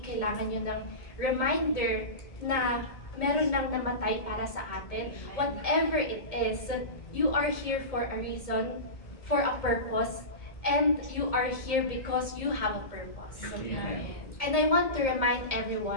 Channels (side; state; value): right; late; 1.7 ms